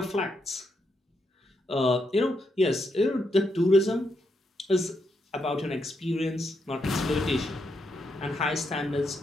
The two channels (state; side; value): normal; both; correlation 0.80